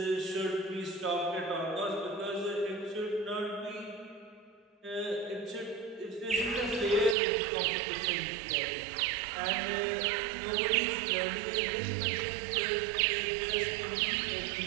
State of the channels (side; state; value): left; drops out; at 7.2 s